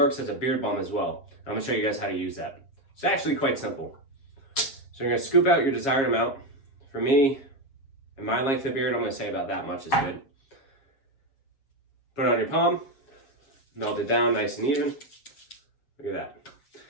as a beard balm as well. I'm gonna show you guys how to use that. It's actually quite simple. So you're gonna scoop out your desired amount. For me, and my length of beard, I'm gonna say about that much is good. Put it on your palm, melt it down nice and even. Look at that.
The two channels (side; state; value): right; late; 7.3 ms